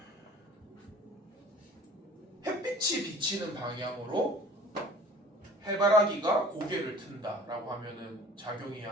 햇빛이 비치는 방향으로 해바라기가 고개를 튼다라고 하면은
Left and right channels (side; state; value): both; normal; correlation 0.47